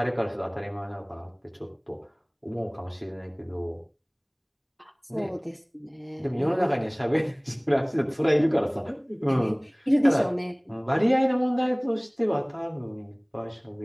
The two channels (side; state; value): both; identical; correlation 1.00